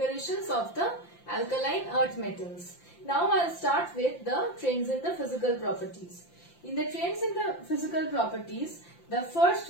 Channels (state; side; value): late; right; 5.8 ms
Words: of the alkaline earth metals. Now I will start with the trends in the physical properties. In the trends in the physical properties, the